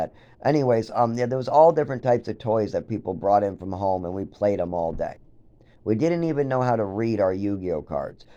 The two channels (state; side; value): identical; both; correlation 1.00